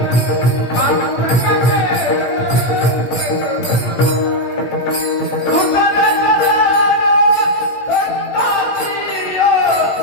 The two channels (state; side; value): late; right; 16 ms